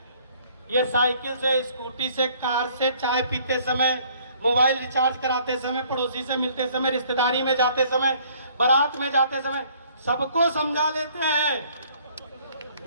ये साइकिल से, स्कूटी से, कार से, चाय पीते समय, मोबाइल रिचार्ज कराते समय, पड़ोसी से मिलते समय, रिश्तेदारी में जाते समय, बारात में जाते समय सबको समझा लेते हैं।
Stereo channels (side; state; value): both; inverted; correlation -0.59